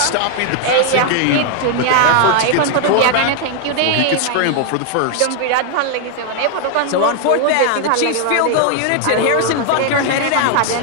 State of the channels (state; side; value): different; both; correlation 0.00